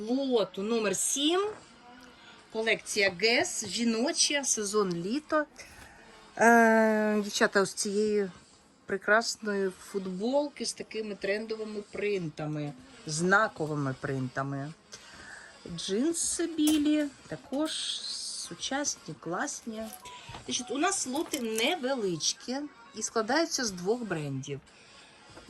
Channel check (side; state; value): both; identical; correlation 1.00